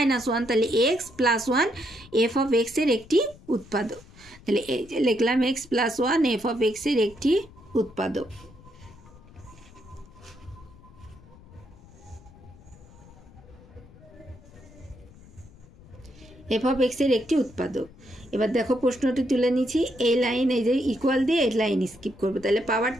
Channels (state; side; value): noise; left; rumble, 22 dB below the sound